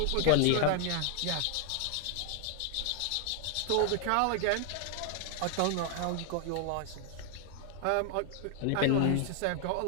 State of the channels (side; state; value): both; different; correlation 0.00